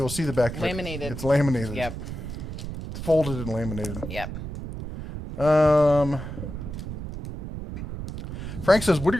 to see the back of it. Laminated. It's laminated. Yep. It's folded and laminated. Yep. Frank says, what are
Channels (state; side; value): noise; right; rumble, 8 dB below the sound